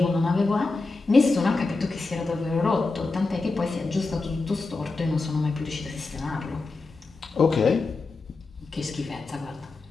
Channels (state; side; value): quieter; right; 3.6 dB